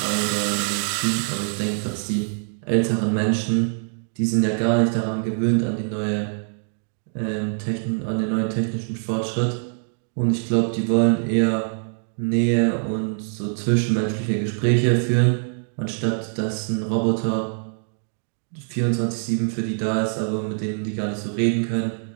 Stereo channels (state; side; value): silent; left; digital silence